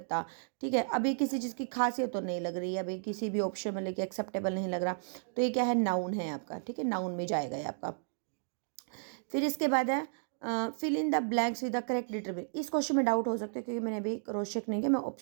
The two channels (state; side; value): silent; left; digital silence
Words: ठीक है। अभी किसी चीज़ की खासियत तो नहीं लग रही है, अभी किसी भी ऑप्शन में लेके एक्सेप्टेबल नहीं लग रहा, तो ये क्या है, नाउन है आपका, ठीक है, नाउन में जाएगा ये आपका। फिर इसके बाद है fill in the blanks with the correct determinant, इस क्वेश्चन में डाउट हो सकता है क्योंकि मैंने अभी क्रॉस चेक नहीं किया, मैं